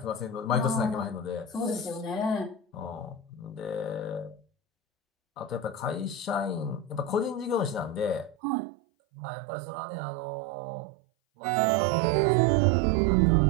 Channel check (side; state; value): left; drops out; at 8.3 s